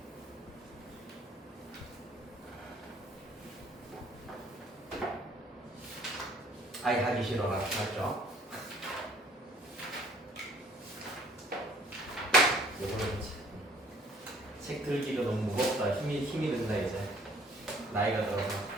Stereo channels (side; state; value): both; normal; correlation 0.58